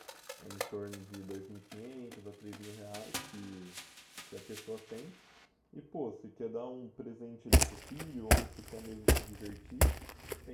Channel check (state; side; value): identical; both; correlation 1.00